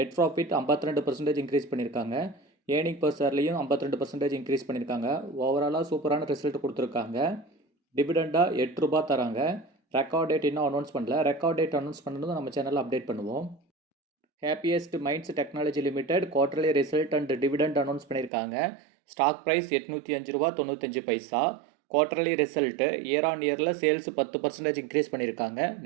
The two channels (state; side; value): drops out; left; at 18.3 s